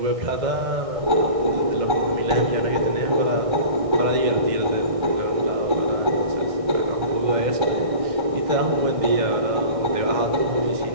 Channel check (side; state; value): left; late; 1.6 ms